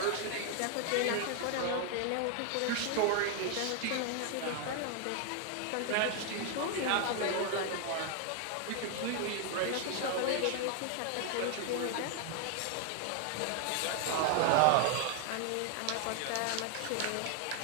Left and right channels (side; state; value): both; different; correlation 0.01